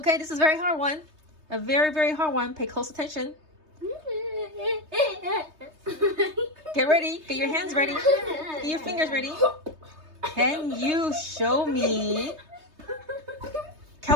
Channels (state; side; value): late; left; 3.2 ms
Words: this is a very hard one. A very, very hard one. Pay close attention. Get ready. Get your hands ready. Get your fingers ready. Can you show me